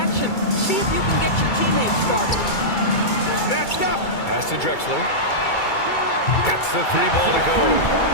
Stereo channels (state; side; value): late; right; 2.3 ms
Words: See if you can get your teammates started. Snatched up. Pass to Drexler. Gets the 3 ball to go.